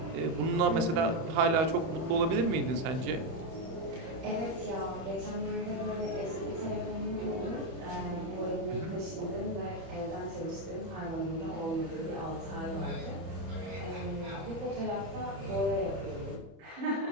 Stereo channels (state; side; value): late; left; 31 ms